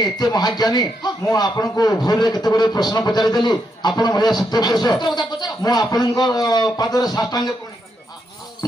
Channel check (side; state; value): both; normal; correlation 0.80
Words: एते महाज्ञानी मु आपण को भूल रे केते बडे प्रश्न पचारि देली आपण भया सत्य पुरुष मु आपण को पादर साष्टांग कोणी